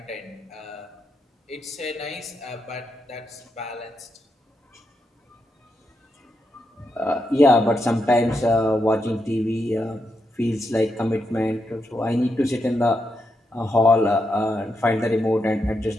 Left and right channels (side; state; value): both; normal; correlation 0.83